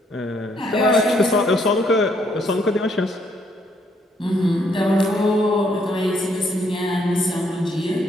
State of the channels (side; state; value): both; normal; correlation 0.71